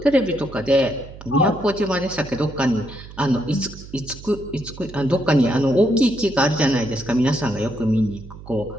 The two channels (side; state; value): right; noise; hum, 16 dB below the sound